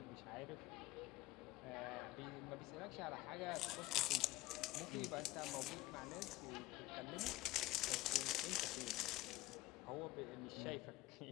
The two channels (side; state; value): right; quieter; 18.5 dB